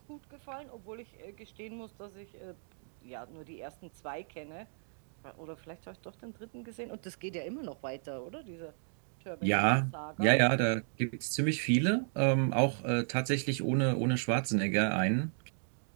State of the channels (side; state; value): left; silent; digital silence